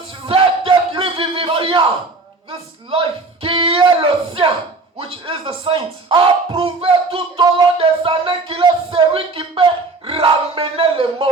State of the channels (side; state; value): left; quieter; 3.7 dB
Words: cet esprit vivifiant this life, qui est le sien, which is the saint, a prouvé tout au long des années qu'il est celui qui peut ramener les